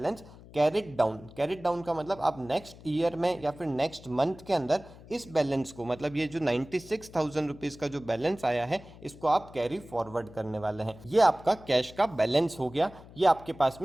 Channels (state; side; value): noise; left; hum, 19 dB below the sound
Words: carried down. Carried down का मतलब आप नेक्स्ट ईयर में या फिर नेक्स्ट मंथ के अंदर इस बैलेंस को, मतलब ये जो 96,000 रुपीज़ का जो बैलेंस आया है इसको आप कैरी फॉरवर्ड करने वाले हैं। ये आपका कैश का बैलेंस हो गया, ये आपके पास